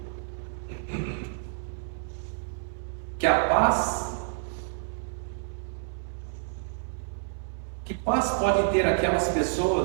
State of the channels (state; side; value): silent; left; 59 dB below the other